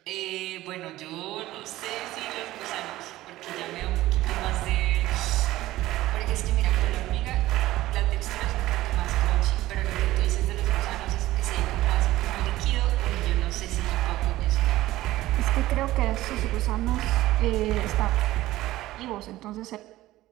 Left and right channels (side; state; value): left; quieter; 16.3 dB